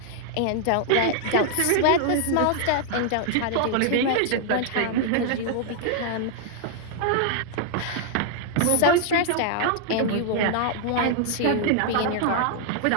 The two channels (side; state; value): both; different; correlation 0.00